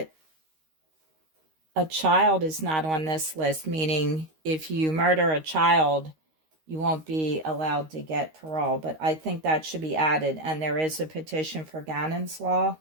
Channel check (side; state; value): left; late; 13 ms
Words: a child is not on this list, meaning if you murder a child, you won't be allowed to get parole. But I think that should be added. And there is a petition for Gannon's law